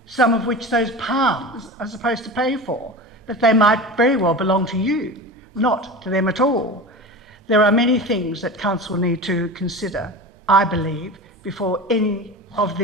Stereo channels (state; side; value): normal; both; correlation 0.30